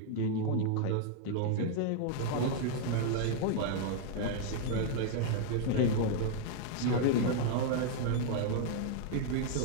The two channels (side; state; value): both; different; correlation 0.00